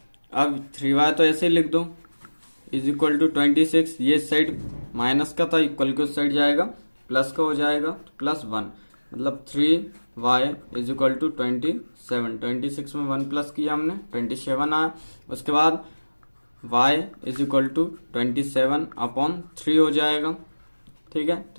अब 3y तो ऐसे ही लिख दो इज इक्वल टू 26। ये साइड माइनस का था, इक्वल के उस साइड जाएगा प्लस का हो जाएगा, +1 मतलब 3y इज इक्वल टू 27। 26 में 1 प्लस किया हमने, 27 आया। उसके बाद y इज इक्वल टू 27/3 हो जाएगा। ठीक है,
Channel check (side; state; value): both; inverted; correlation -1.00